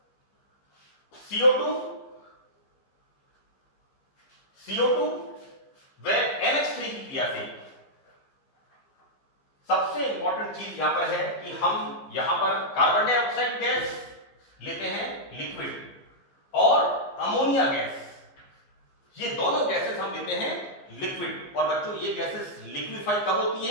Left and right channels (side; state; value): right; late; 15 ms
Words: CO2 व NH3 की क्रिया से सबसे इंपॉर्टेंट चीज यहां पर है कि हम यहां पर कार्बन डाइऑक्साइड गैस लेते हैं लिक्विड और अमोनिया गैस, ये दोनों गैसेस हम लेते हैं लिक्विड। और बच्चों ये गैसेस लिक्विफाई कब होती